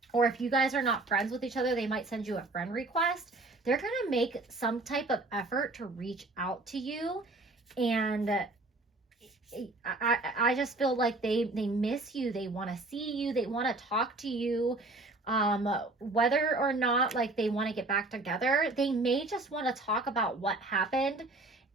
Or if you guys are not friends with each other, they might send you a friend request. They're going to make some type of effort to reach out to you. And I just feel like they miss you. They want to see you. They want to talk to you. Whether or not like they want to get back together, they may just want to talk about what happened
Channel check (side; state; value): left; quieter; 3.1 dB